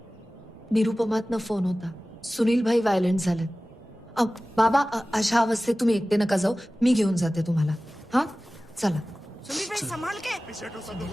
निरुपमातनं फोन होता. सुनील भाई व्हायलंट झालेत. बाबा, अशा अवस्थेत तुम्ही एकटे नका जाऊ, मी घेऊन जाते तुम्हाला. हा चला. सुनील भाई संभाल के.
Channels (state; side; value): normal; both; correlation 0.97